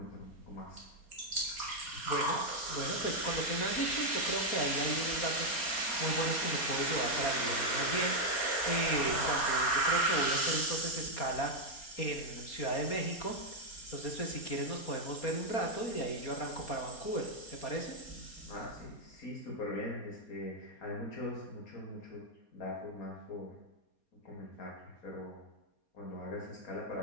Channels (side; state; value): right; late; 4.3 ms